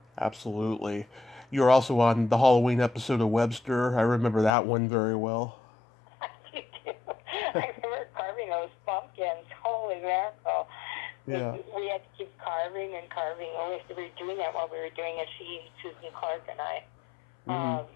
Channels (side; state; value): right; drops out; at 4.5 s